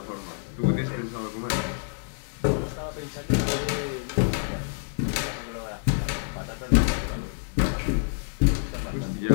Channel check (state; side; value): silent; right; 60 dB below the other